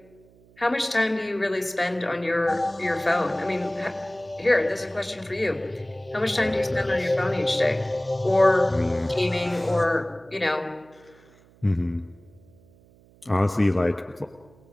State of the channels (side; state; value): right; noise; hum, 28 dB below the sound